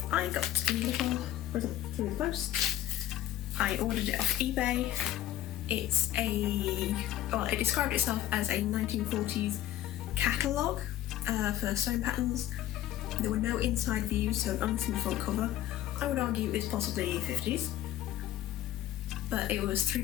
I got a little present through the post. I ordered it off eBay. It described itself as a 1940s catalogue for sewing patterns. There were no inside views, so only the front cover. I would argue it's possibly 50s. But it was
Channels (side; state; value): right; quieter; 13.2 dB